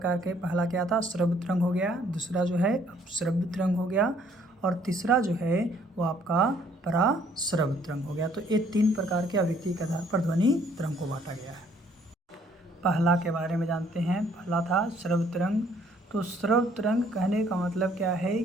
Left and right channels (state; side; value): normal; both; correlation 0.63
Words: के। पहला क्या था? श्रव्य तरंग हो गया, दूसरा जो है अपश्रव्य तरंग हो गया और तीसरा जो है वो आपका पराश्रव्य तरंग हो गया। तो ये 3 प्रकार के आवृत्ति के आधार पर ध्वनि तरंग को बांटा गया है। पहला के बारे में जानते हैं। पहला था श्रव्य तरंग। तो श्रव्य तरंग कहने का मतलब क्या है